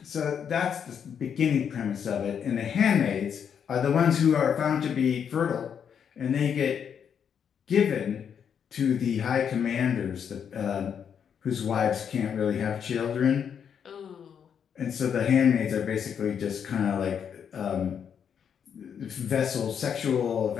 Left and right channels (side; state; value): right; quieter; 7.8 dB